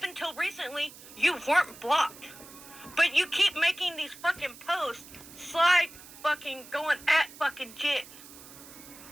until recently, you weren't blocked. But you keep making these fucking posts, slide fucking going at fucking Jen.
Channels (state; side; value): noise; right; hiss, 18 dB below the sound